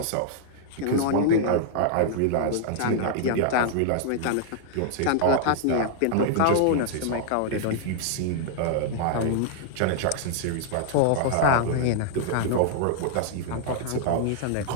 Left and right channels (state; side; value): different; both; correlation -0.01